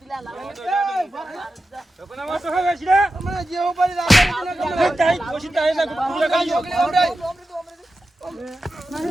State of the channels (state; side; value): normal; both; correlation 0.92